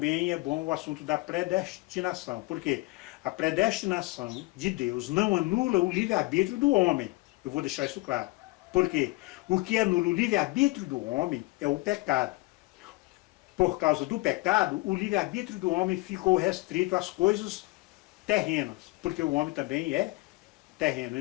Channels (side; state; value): right; quieter; 22.6 dB